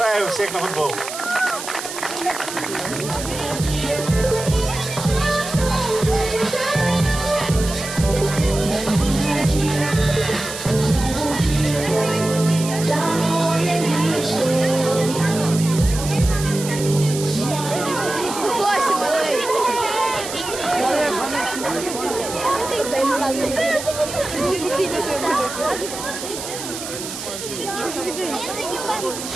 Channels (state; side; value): noise; right; hiss, 8 dB below the sound